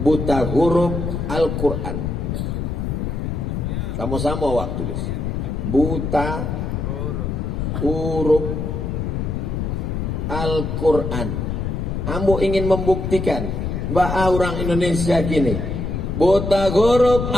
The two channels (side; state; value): left; noise; rumble, 2 dB below the sound